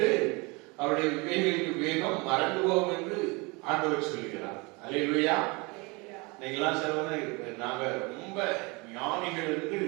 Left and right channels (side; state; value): left; quieter; 27.4 dB